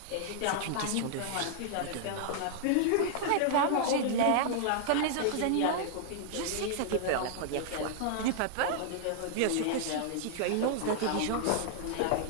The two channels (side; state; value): both; different; correlation -0.01